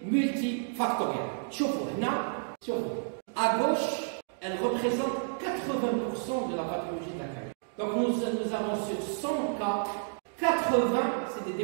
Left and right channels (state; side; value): silent; left; digital silence